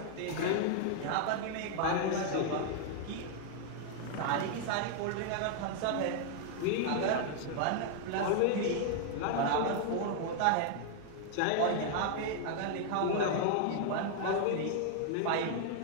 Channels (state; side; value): different; both; correlation 0.00